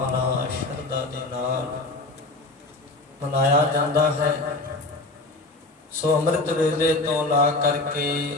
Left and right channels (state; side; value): quieter; right; 3.1 dB